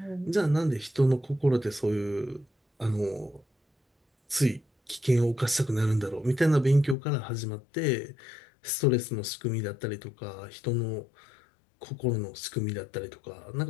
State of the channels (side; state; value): right; drops out; at 7.0 s